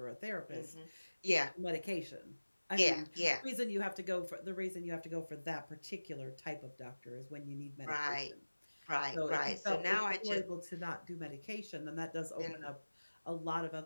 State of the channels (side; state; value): both; inverted; correlation -1.00